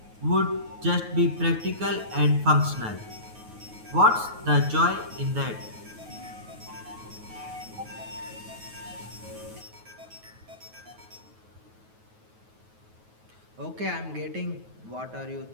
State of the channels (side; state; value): left; late; 9.3 ms